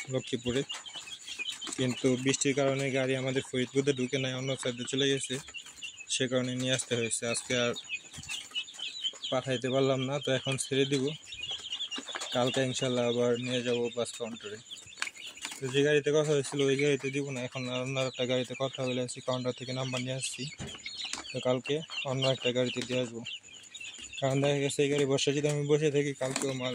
লক্ষ্মীপুরে, কিন্তু বৃষ্টির কারণে গাড়ি আমাদের ফরিদপুরে ঢুকে নাই, অন্য সাইডে চলে গেছে। সে কারণে নিয়ে আসতে হয়েছে। আজকে আর পাঠাইতে পারলাম না, তো এখন ছেড়ে দিব। কালকে ইনশাল্লাহ আবার নিয়ে যাব বাস কাউন্টারে। তো যে গাড়িতে কথা হয়েছিল ওই গাড়িতে দিব না, এখন অন্য একটা গাড়িতে কথা বলে আসছি, কাউন্টার থেকে নাম্বার নিয়ে আসছি। তো কালকে অন্য একটা গাড়িতে দিয়ে আসবো, কারণ দেখা গেছে এই গাড়ি বসে যদি আমি বসে থাকি কালকেও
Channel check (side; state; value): both; identical; correlation 1.00